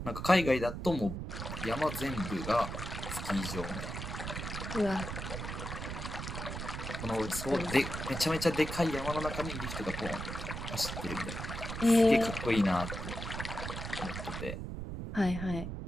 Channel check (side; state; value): right; noise; rumble, 6 dB below the sound